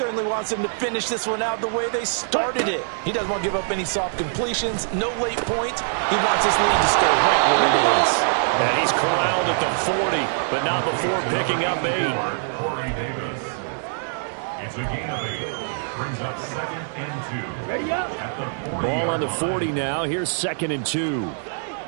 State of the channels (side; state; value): left; silent; digital silence